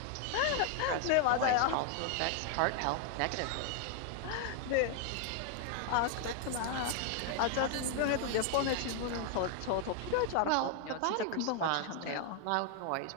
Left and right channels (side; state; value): both; different; correlation 0.00